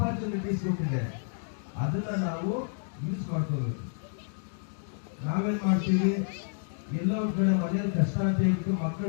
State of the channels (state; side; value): silent; right; digital silence